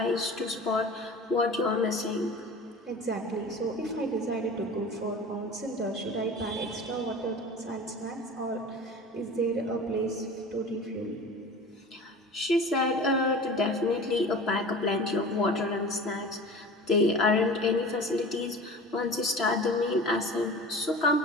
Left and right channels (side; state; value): both; normal; correlation 0.37